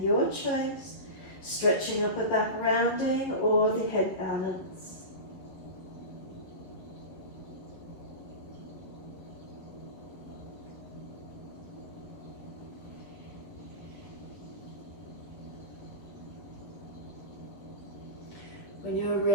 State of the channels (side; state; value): right; late; 10 ms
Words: Your choice, stretching upper back rounding or the head balance. When you're